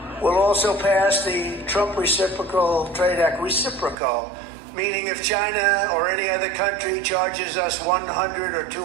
We'll also pass the Trump Reciprocal Trade Act, reciprocal, meaning if China or any other country charges us 100 or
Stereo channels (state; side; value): drops out; left; at 4.0 s